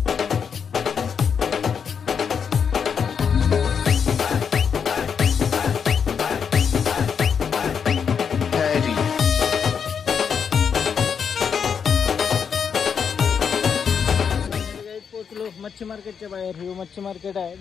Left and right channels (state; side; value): quieter; right; 6.9 dB